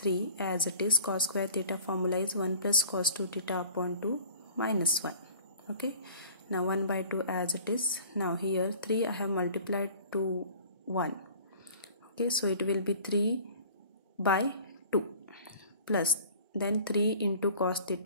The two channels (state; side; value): inverted; both; correlation -0.48